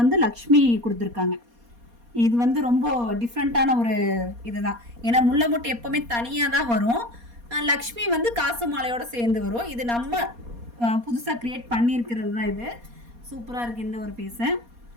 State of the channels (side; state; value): left; late; 4.2 ms